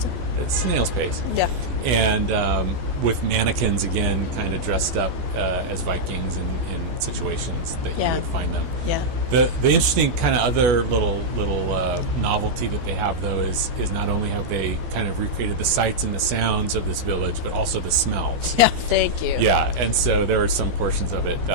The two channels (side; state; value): left; late; 14 ms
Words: It's snail's pace. Yeah. And with mannequins, again, kind of dressed up as Vikings in situations that you would find them. Yeah. The interesting kind of other little novelty that they have, though, is not only have they kind of recreated the sights and the sounds of this village, but also the smells. Yeah, thank you. Yeah, and so there are some portions of it